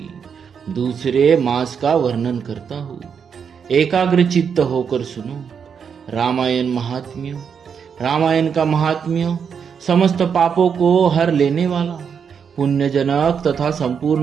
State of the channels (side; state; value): left; quieter; 6.9 dB